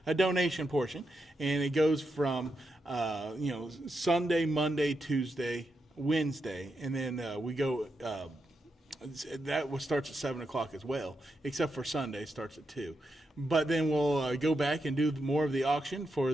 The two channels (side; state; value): both; normal; correlation 0.85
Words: a donation portion, and it goes from Sunday, Monday, Tuesday, Wednesday, and then we go. That starts at 7 o'clock as well, except for Sunday starts at 2. But then we'll go back and do more of the auction for